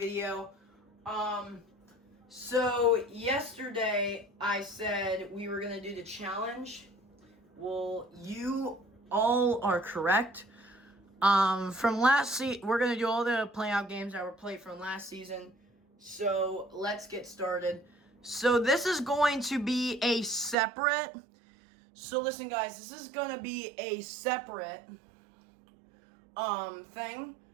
So yesterday I said we were gonna do the challenge. Well, you all are correct. From last season, we're gonna do all the playoff games that were played from last season. So let's get started. So this is going to be a separate. So listen, guys, this is gonna be a separate thing. I'm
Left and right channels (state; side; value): drops out; left; at 20.6 s